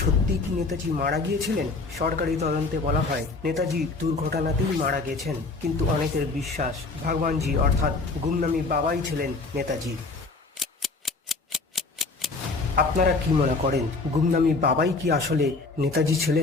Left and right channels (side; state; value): right; quieter; 3.7 dB